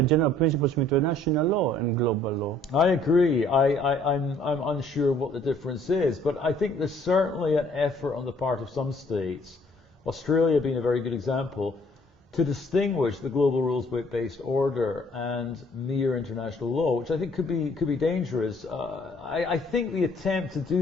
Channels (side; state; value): both; normal; correlation 0.60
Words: general principles of international law and global law? I agree. I'm unsure what the difference is, but I think there's certainly an effort on the part of some states, Australia being a very good example, to distinguish the global rules-based order and mere international law, which I think could be dangerous. I think the attempt to